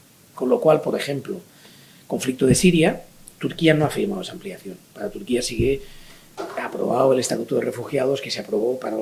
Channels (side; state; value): both; identical; correlation 1.00